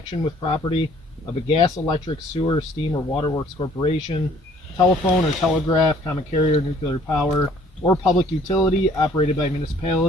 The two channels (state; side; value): normal; both; correlation 0.58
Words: with property of a gas, electric, sewer, steam, or waterworks corporation, telephone or telegraph, common carrier, nuclear power, or public utility operated by a